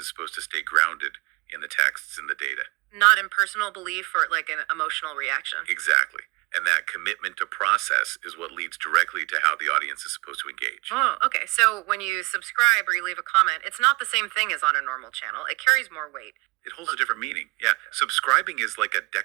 supposed to stay grounded in the texts and the data. Not in personal belief or like an emotional reaction. Exactly. And that commitment to process is what leads directly to how the audience is supposed to engage. Oh, okay. So when you subscribe or you leave a comment, it's not the same thing as on a normal channel. It carries more weight. It holds a different meaning. Yeah. Subscribing is like a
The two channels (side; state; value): left; quieter; 27.2 dB